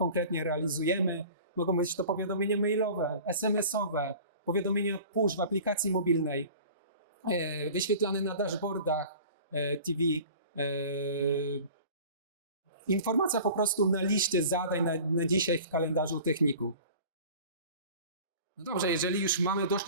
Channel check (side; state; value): both; inverted; correlation -0.42